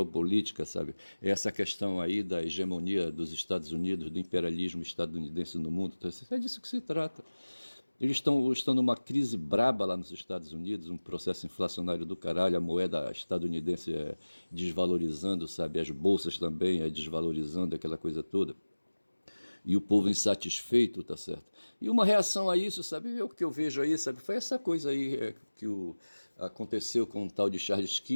sabe, é essa questão aí da hegemonia dos Estados Unidos, do imperialismo estadunidense no mundo, tá certo? É disso que se trata. Eles estão numa crise braba lá nos Estados Unidos, um processo inflacionário do caralho, a moeda estadunidense desvalorizando, sabe, as bolsas também desvalorizando, aquela coisa toda. E o povo insatisfeito, tá certo? E uma reação a isso, sabe, o que eu vejo aí, sabe, foi essa coisa aí aconteceu com o tal de Charles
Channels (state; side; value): inverted; both; correlation -1.00